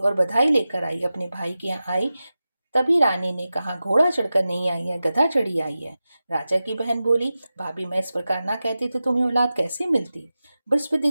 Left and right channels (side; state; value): both; inverted; correlation -0.94